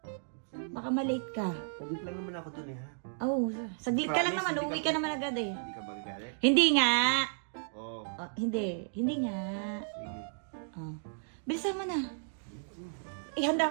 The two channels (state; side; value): silent; left; digital silence